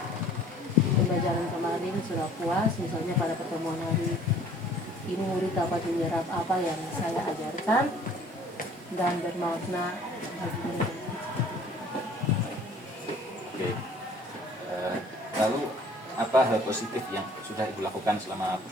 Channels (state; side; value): normal; both; correlation 0.53